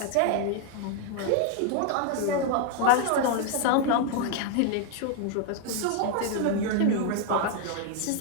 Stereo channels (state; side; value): different; both; correlation 0.01